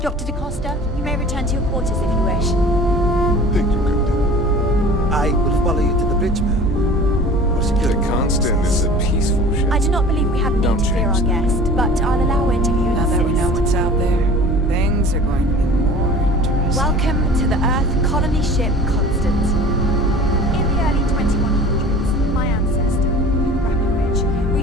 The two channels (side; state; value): both; normal; correlation 0.43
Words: DaCosta, you may return to your quarters if you wish. Thank you, Captain. I will follow you to the bridge, ma'am. The Constant is a peaceful ship. I do not believe we have need to fear our guest, but I'll allow interviewers Now that we know what's out there, things are going to be more interesting. Welcome to the Earth colony ship Constant. In the early 2100s, my ancestor, Brackenridge,